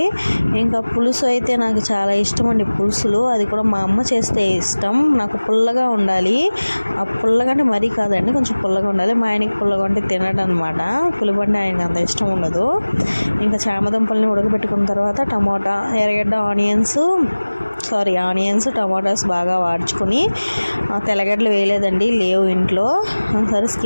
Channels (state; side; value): inverted; both; correlation -1.00